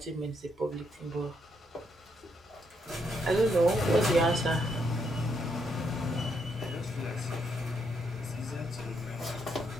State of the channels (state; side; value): normal; both; correlation 0.76